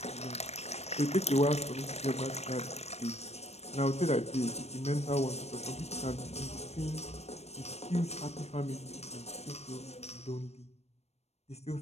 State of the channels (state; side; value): late; right; 0.31 ms